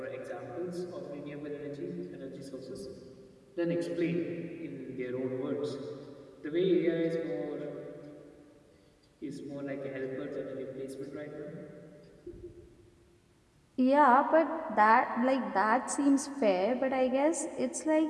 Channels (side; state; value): both; identical; correlation 1.00